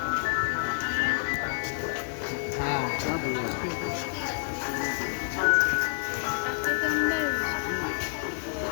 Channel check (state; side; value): silent; right; 56 dB below the other